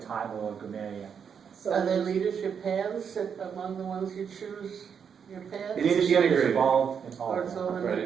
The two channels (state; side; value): quieter; left; 7.1 dB